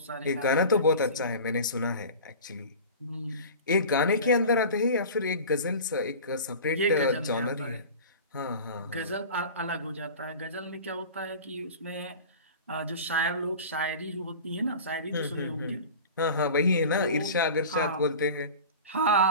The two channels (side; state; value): both; inverted; correlation -0.36